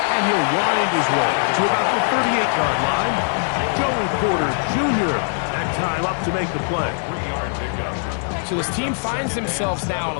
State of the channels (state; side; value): silent; right; 65 dB below the other